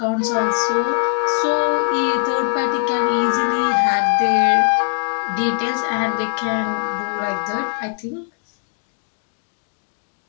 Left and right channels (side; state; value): right; silent; digital silence